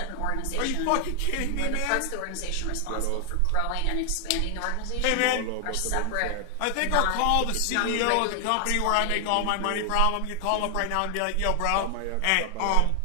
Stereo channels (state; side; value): different; both; correlation 0.00